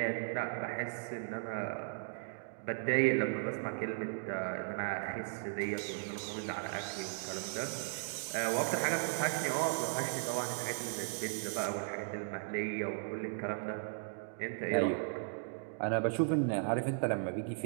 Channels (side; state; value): left; silent; digital silence